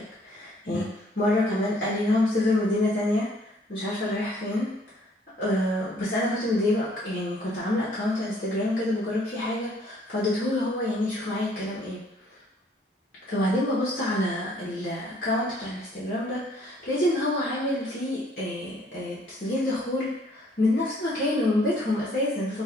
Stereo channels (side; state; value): both; normal; correlation 0.62